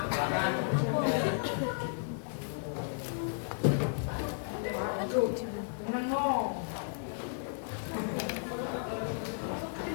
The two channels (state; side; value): silent; right; digital silence